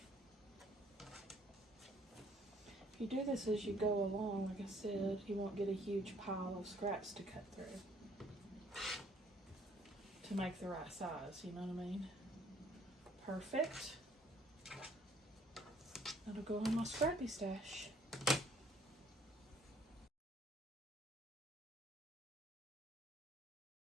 If you do this as you go along, like I said, you won't get a huge pile of scraps to cut through to make the right size, you know what I mean? Perfect. That'll go in my scrappy stash.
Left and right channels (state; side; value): normal; both; correlation 0.61